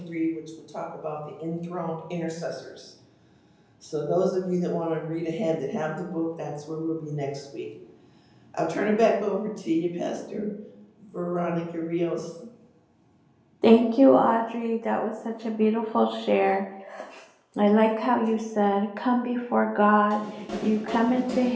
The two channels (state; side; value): identical; both; correlation 1.00